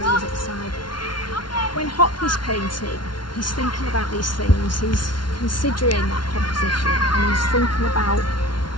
at the side. When Hockney's painting, he's thinking about these things, he's considering that composition, and he's thinking about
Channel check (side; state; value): right; late; 0.71 ms